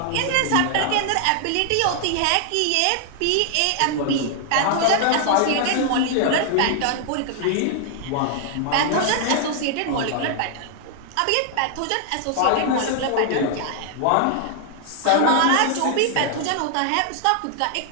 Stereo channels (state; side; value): different; both; correlation 0.00